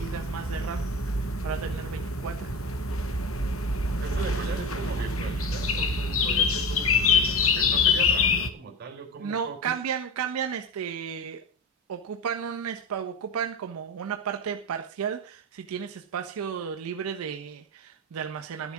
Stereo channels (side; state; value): both; normal; correlation 0.26